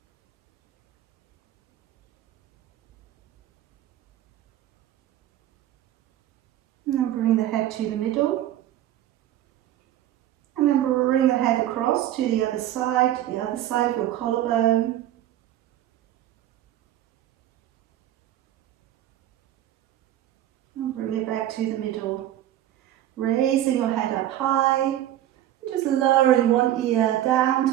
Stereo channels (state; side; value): quieter; left; 12.8 dB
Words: And then bring the head to the middle. And then bring the head across to the other side of your collarbone. And bring it back to the middle. Raising your head up high, just lowering one ear down